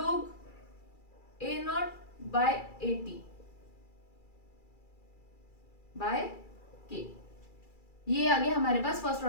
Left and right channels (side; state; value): right; late; 2.3 ms